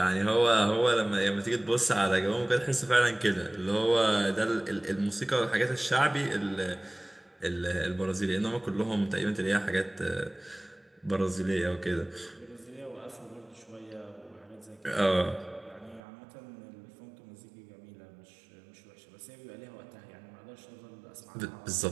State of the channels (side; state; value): left; drops out; at 16.0 s